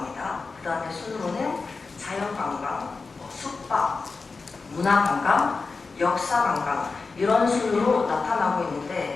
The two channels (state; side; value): quieter; right; 4.3 dB